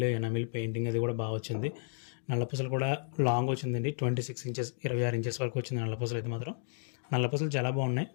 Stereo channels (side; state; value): right; silent; digital silence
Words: పెయింటింగ్ అది కూడా బాగా వచ్చింది. నల్లపూసలు కూడా లాంగ్ వచ్చిందండి. 26 ఇంచెస్ 26 ఇంచెస్ వరకు వచ్చింది నల్లపూసలు అయితే మాత్రం. నల్లపూసలు చాలా బాగున్నాయి.